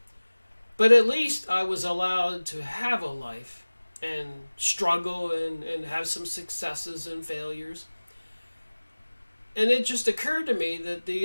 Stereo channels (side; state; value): both; inverted; correlation -1.00